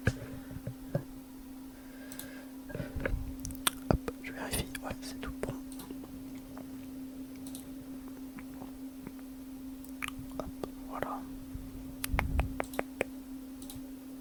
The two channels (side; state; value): both; identical; correlation 1.00